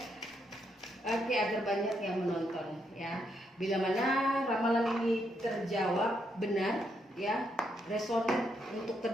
Oke, agar banyak yang menonton ya. Bila mana ramalan ini terjawab benar ya, resonan untuk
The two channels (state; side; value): normal; both; correlation 0.78